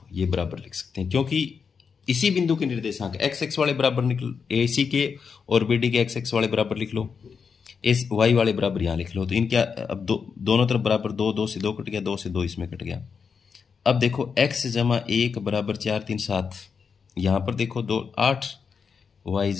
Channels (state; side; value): quieter; right; 5.9 dB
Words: ये बराबर लिख सकते हैं, क्योंकि इसी बिंदु के निर्देशांक x वाले बराबर निकल AC के और BD के x वाले बराबर लिख लो, y वाले बराबर यहाँ लिख लो, तो इनके अब दोनों तरफ बराबर 2, 2 से 2 कट गया, 2 से 2 इसमें कट गया। अब देखो x जमा 1 बराबर 4 3 7, यहाँ पर देखो 2 8, y